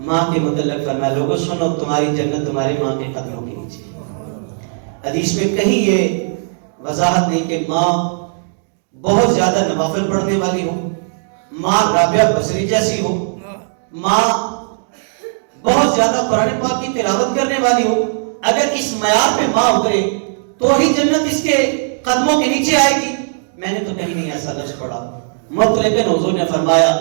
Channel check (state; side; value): silent; left; 68 dB below the other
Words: ماں کے متعلق فرمایا لوگوں سنو تمہاری جنت تمہاری ماں کے قدموں کے نیچے. حدیث میں کہیں یہ وضاحت نہیں کہ ماں بہت زیادہ نوافل پڑھنے والی ہو، ماں رابعہ بصری جیسی ہو، ماں بہت زیادہ قرآن پاک کی تلاوت کرنے والی ہو. اگر اس معیار پہ ماں اترے تو ہی جنت اس کے قدموں کے نیچے آئے گی. میں نے تو کہیں نہیں ایسا لفظ پڑھا. لیکن حضور نے فرمایا